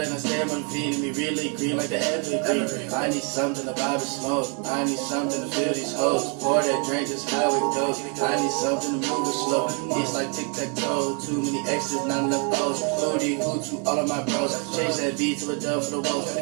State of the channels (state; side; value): quieter; left; 37.2 dB